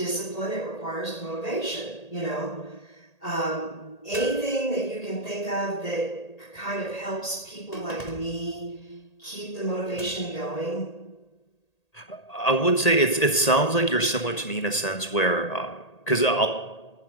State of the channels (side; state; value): right; late; 1.8 ms